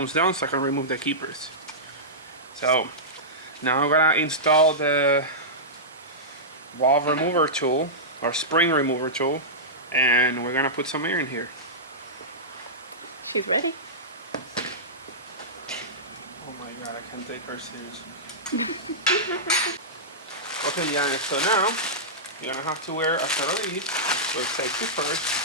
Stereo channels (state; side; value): normal; both; correlation -0.15